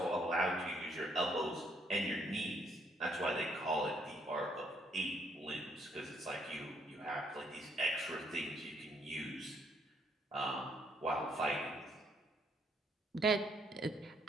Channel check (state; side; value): normal; both; correlation 0.69